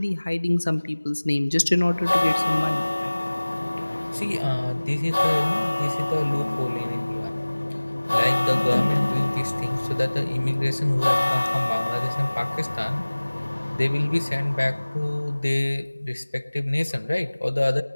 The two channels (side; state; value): both; inverted; correlation -1.00